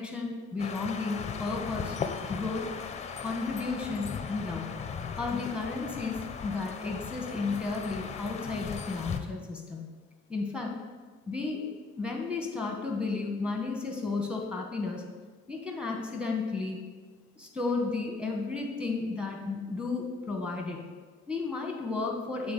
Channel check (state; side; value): quieter; right; 3.7 dB